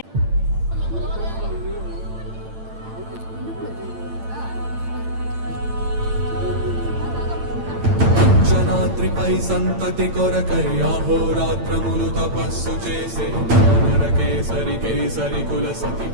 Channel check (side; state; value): left; late; 8.9 ms